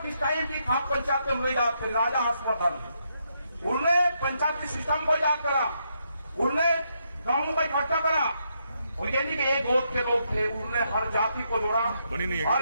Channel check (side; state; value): both; inverted; correlation -0.79